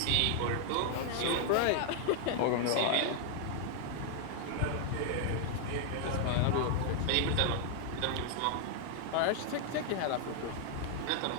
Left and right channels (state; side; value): different; both; correlation 0.00